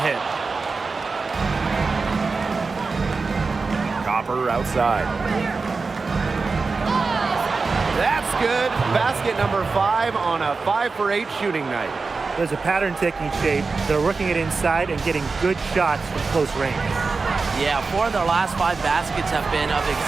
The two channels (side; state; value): left; quieter; 4.3 dB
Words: hit. Copper outside. That's good. Basket number 5 on a 5 for 8 shooting night. There's a pattern taking shape. They're working it inside and getting good shots from close range. Yeah, 4 of their last 5 baskets have been of